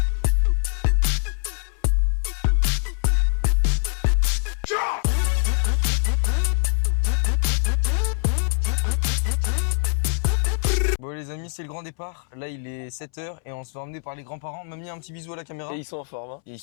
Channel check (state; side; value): silent; right; 63 dB below the other